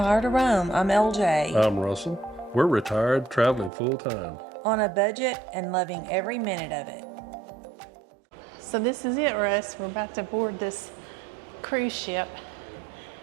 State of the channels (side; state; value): left; drops out; at 3.7 s